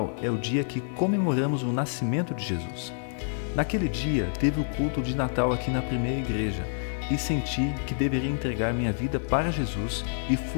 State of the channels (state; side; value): silent; right; digital silence